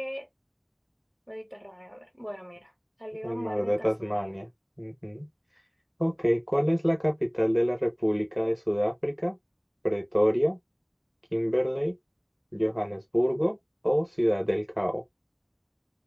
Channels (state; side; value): identical; both; correlation 1.00